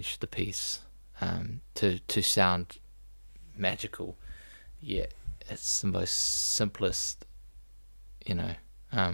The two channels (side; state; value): both; inverted; correlation -1.00